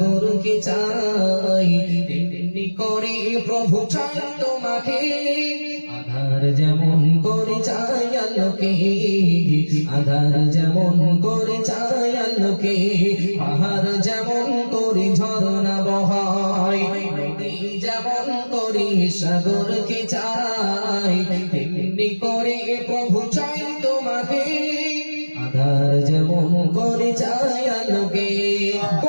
চাই, তেমনি করে প্রভু চাই তোমাকে। আধার যেমন করে চাই আলোকে, আধার যেমন করে চাই আলোকে, পাহাড় যেমন করে ঝরনা বহাই, নদী যেমন করে সাগরকে চাই, তেমনি করে প্রভু চাই তোমাকে। আধার যেমন করে চাই আলোকে,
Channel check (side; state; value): both; inverted; correlation -1.00